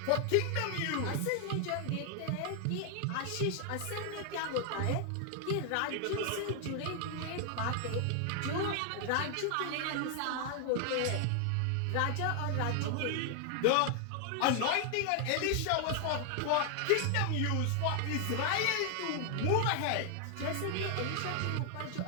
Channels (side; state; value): both; different; correlation 0.00